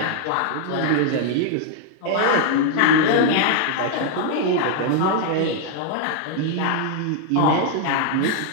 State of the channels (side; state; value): both; different; correlation 0.00